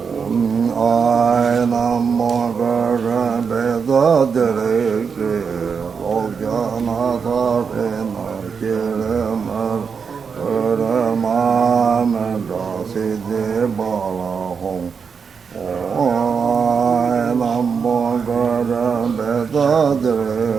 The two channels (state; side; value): quieter; left; 6.0 dB